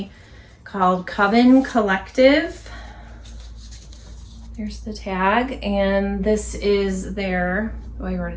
called Coven Collective. There's the tag, and this is their, oh, I wrote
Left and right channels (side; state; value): both; identical; correlation 1.00